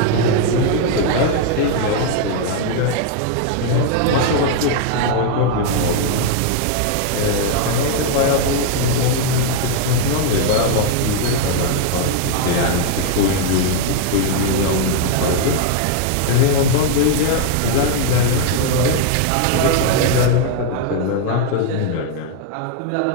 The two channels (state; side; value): different; both; correlation 0.00